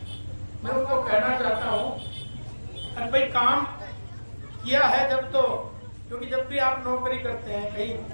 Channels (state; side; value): inverted; both; correlation -1.00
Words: मैं उनको कहना चाहता हूँ अरे भाई काम किया है जब तो, क्योंकि जब भी आप नौकरी करते हैं कहीं